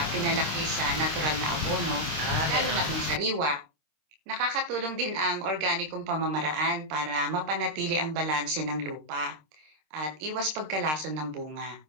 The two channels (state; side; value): late; left; 26 ms